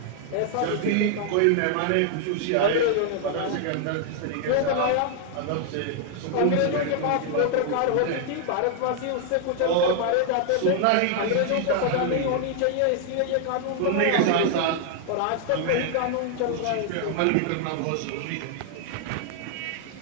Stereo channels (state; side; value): different; both; correlation 0.00